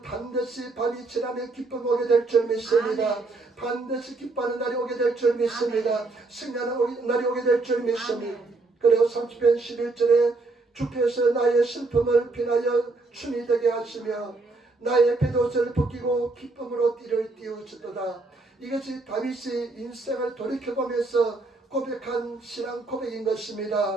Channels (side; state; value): left; quieter; 3.4 dB